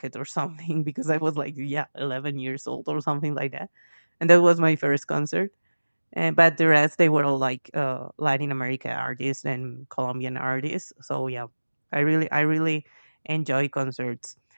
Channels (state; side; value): inverted; both; correlation -1.00